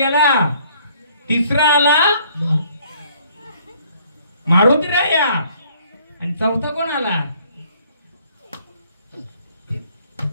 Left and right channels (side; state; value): both; inverted; correlation -0.61